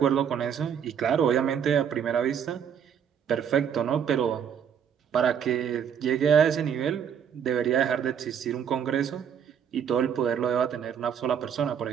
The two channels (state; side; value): quieter; left; 8.1 dB